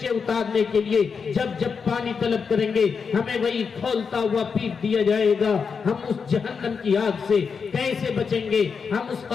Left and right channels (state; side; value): quieter; right; 5.7 dB